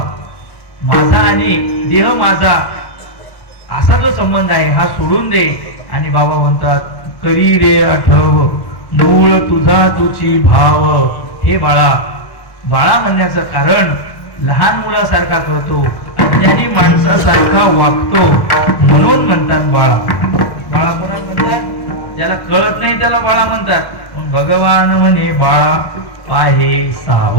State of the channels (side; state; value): right; late; 1.1 ms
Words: माझा आणि देह माझा असा जो संबंध आहे हा सोडून दे. आणि बाबा म्हणतात करी रे आठव मूळ तुझा तुझी भाव. हे बाळा, बाळा म्हणण्याचं कारण लहान मुलासारखा करतो, अज्ञानी माणसासारखा वागतो म्हणून म्हणतात बाळा. बाळा कोणाला म्हणतात? ज्याला कळत नाही त्याला बाळा म्हणतात. पण भगवान म्हणे बाळा पाहे